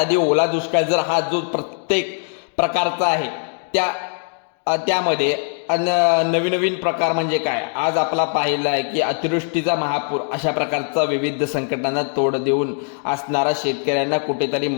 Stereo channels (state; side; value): silent; right; 56 dB below the other